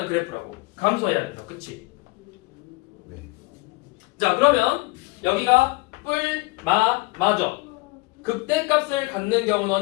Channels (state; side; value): quieter; right; 24.0 dB